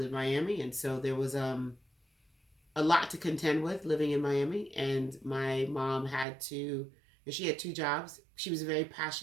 Miami, and so there was a lot to contend with living in Miami. And my mom she had two jobs. She was a very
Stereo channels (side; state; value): left; drops out; at 6.2 s